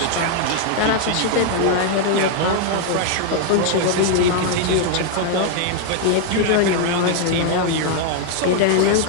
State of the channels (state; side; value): different; both; correlation 0.00